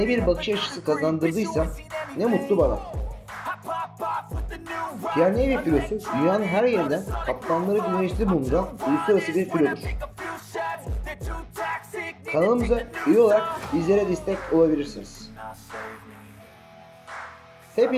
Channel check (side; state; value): both; identical; correlation 1.00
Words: bir bakış açısı kazandırdıysam ne mutlu bana. Pierre Navy filosu dünyanın her yerinden kaptanları güneşli bulunduran uluslararası bir filodur. Kanalımıza üye olarak bizlere destek olabilirsiniz.